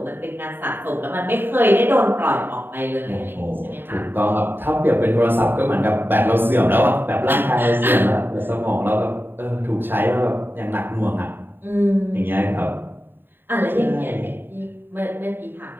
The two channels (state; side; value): late; left; 0.097 ms